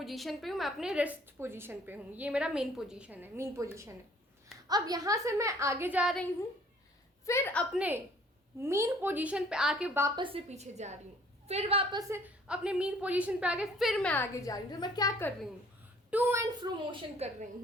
पे हूँ, मैं अपने रेस्ट पोजीशन पे हूँ, ये मेरा मेन पोजीशन है। अब यहाँ से मैं आगे जा रही हूँ, फिर अपने मेन पोजीशन पे आके वापस से पीछे जा रही हूँ, फिर वापस से अपने मेन पोजीशन पे आके फिर मैं आगे जा रही हूँ। तो मैं क्या कर रही हूँ? टू एंड फ्रो मोशन कर रही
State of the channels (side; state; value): both; normal; correlation 0.57